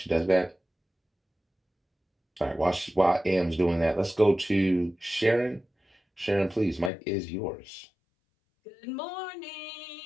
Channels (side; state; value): right; drops out; at 6.9 s